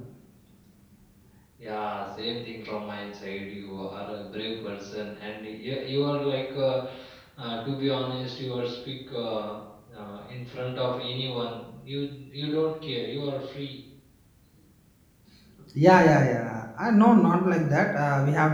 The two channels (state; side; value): identical; both; correlation 1.00